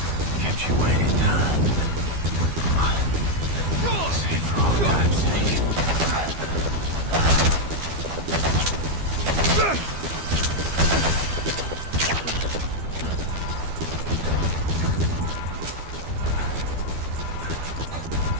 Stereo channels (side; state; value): left; late; 12 ms